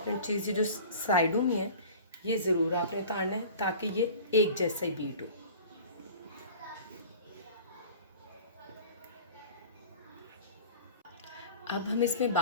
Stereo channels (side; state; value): both; inverted; correlation -0.42